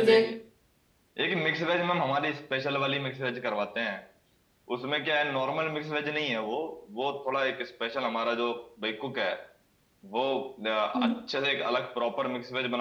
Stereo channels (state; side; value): identical; both; correlation 1.00